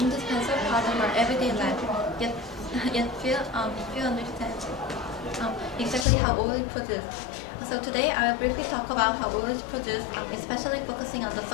indispensable part of our everyday life, yet few understand exactly how oil is produced. So today I will briefly talk about how oil is produced, especially focusing on the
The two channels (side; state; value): right; drops out; at 6.1 s